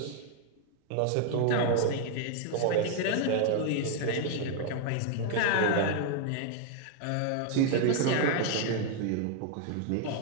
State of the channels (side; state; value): both; different; correlation 0.00